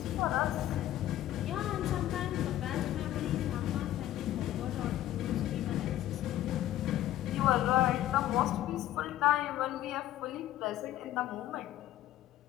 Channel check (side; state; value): right; quieter; 13.5 dB